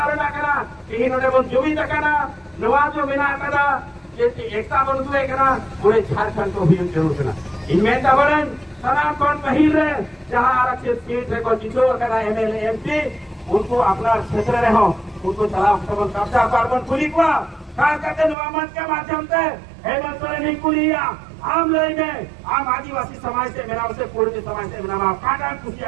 ना करा इन्होंने वो जुमी तकना नवाजो बिना करा एकता बंधुए करा पूरे झारखंड को भी जरूर करा इनमें तबरन सनातन पहिल रहे जहाँ आरक्षित सीट है को जितो करा एमएलए एमपी उनको अपना क्षेत्र रहो उनको चला कब्जा कार्बन खुली को खास करके नवामत के माध्यम से हेमंत सोरेन नहीं कुलिया आम लय में आम आदिवासी समाज से मेरा उसे पूर्व समाज से मेरा काटा कुछ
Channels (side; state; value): left; drops out; at 18.4 s